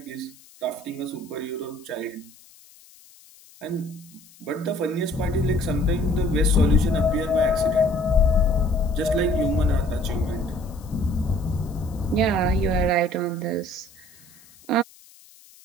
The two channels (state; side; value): noise; left; hiss, 25 dB below the sound